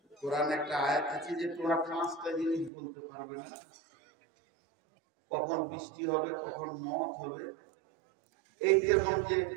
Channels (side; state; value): left; drops out; at 2.7 s